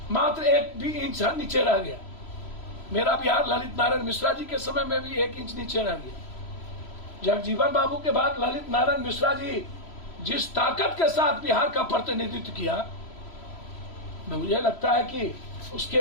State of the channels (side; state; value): right; late; 3.0 ms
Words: मात्र 1 भी इंच नीचे रह गया। मेरा बिहार ललित नारायण मिश्रा जी के समय में भी 1 इंच नीचे रह गया। जगजीवन बाबू के बाद ललित नारायण मिश्रा जी जिस ताकत के साथ बिहार का प्रतिनिधित्व किया, मुझे लगता है कि उसके